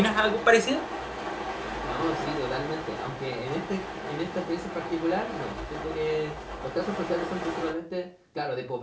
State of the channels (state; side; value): identical; both; correlation 1.00